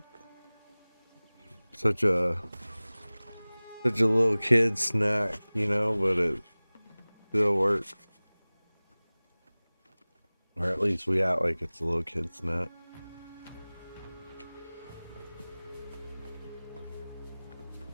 Such a little kid snack, you know, but it still works. Or at least we act like it's a little kid snack.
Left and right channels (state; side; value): inverted; both; correlation -0.99